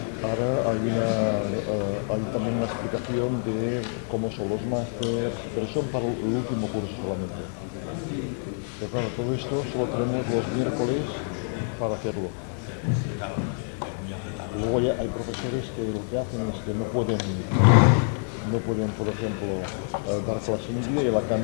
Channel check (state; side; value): silent; right; 58 dB below the other